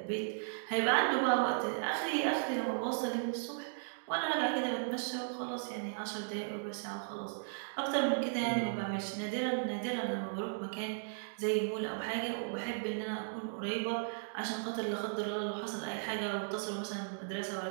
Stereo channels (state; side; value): silent; left; digital silence